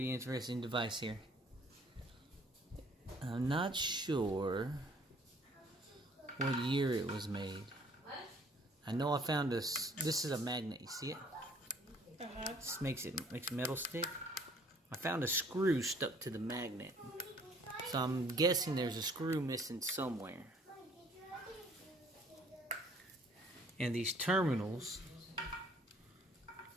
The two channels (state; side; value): normal; both; correlation 0.58